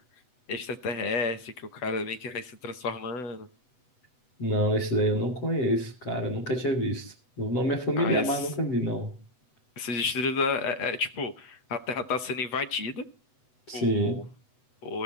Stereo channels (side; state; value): right; late; 8.0 ms